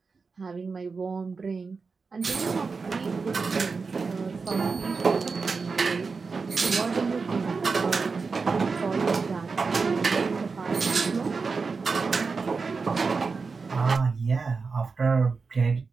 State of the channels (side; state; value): left; quieter; 4.6 dB